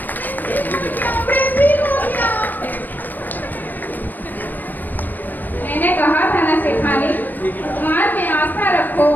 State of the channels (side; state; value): right; late; 0.089 ms